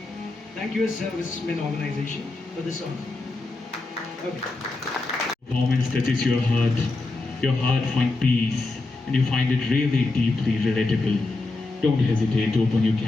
Thank you, Servicemen Organization, for this song. Okay. Performance touches your heart finds peace, and you find it really deeply relatable. Don't hesitate to open your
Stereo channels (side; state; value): right; quieter; 3.2 dB